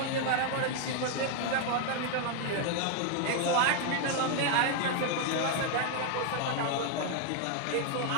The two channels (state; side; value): different; both; correlation 0.00